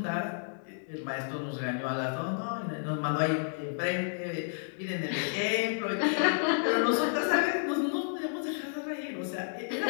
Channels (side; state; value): right; silent; digital silence